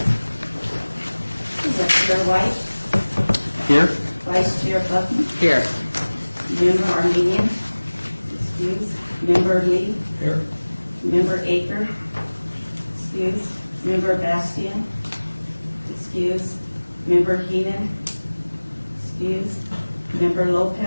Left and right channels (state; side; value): inverted; both; correlation -1.00